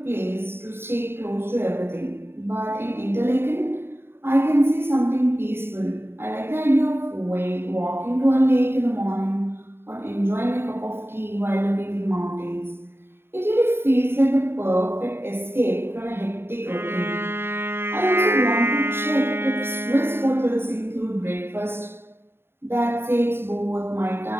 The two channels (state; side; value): late; left; 0.11 ms